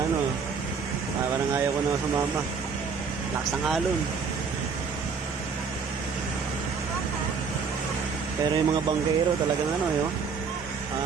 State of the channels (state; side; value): quieter; left; 5.5 dB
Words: ano. Parang ayaw ko na sumama. Lakas ng alon. Pero yung mga bangkero talagang ano yun.